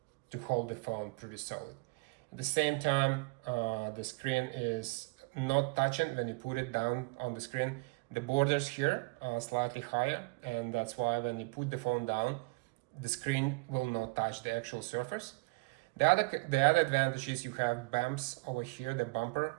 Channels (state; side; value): quieter; left; 28.2 dB